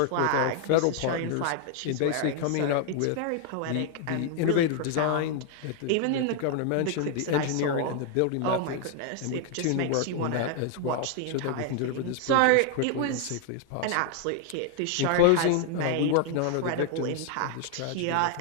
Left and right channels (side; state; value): both; different; correlation 0.00